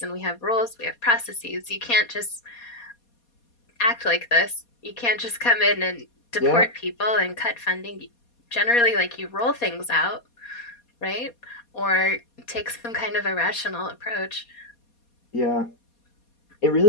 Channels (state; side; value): late; right; 4.2 ms